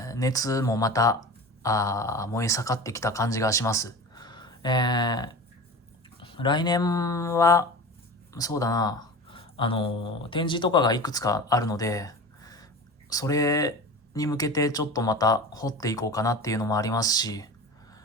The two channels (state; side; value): normal; both; correlation 0.32